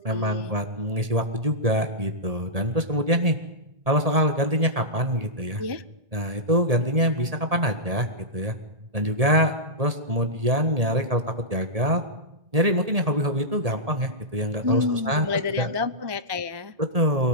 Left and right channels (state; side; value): late; left; 1.8 ms